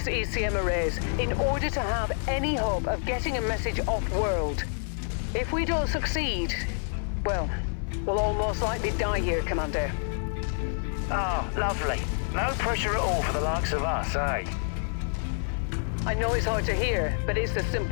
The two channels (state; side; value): silent; right; 59 dB below the other